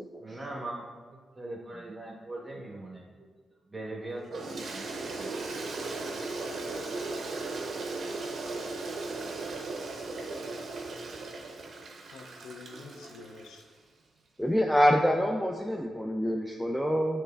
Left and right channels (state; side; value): normal; both; correlation 0.92